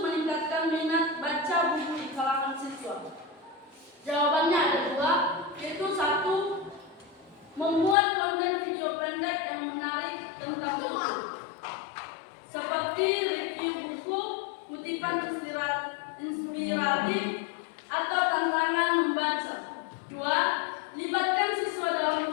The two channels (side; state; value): right; drops out; at 8.0 s